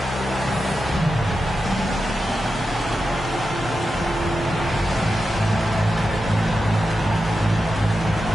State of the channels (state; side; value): normal; both; correlation 0.90